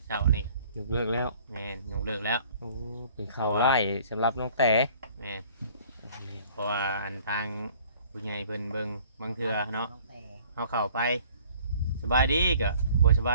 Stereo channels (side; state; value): both; inverted; correlation -0.54